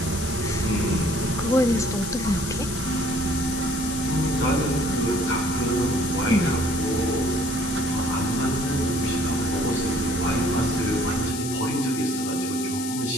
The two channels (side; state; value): left; noise; hiss, 7 dB below the sound